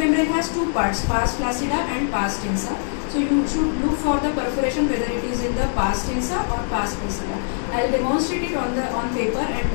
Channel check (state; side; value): silent; right; 57 dB below the other